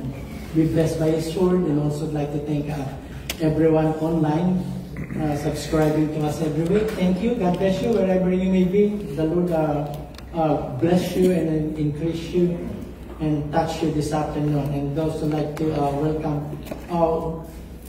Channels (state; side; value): identical; both; correlation 1.00